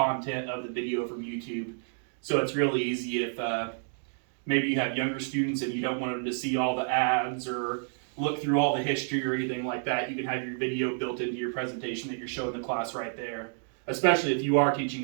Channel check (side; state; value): left; silent; 58 dB below the other